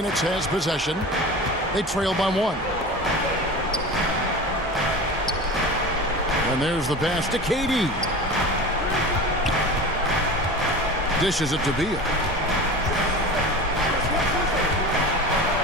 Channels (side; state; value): both; normal; correlation 0.33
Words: has possession. They trail by 1. And there's the pass to KD. Dishes it to Beal.